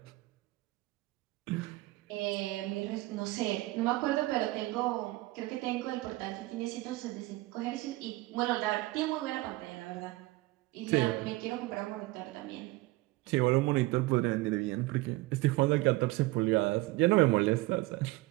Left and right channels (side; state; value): left; quieter; 20.3 dB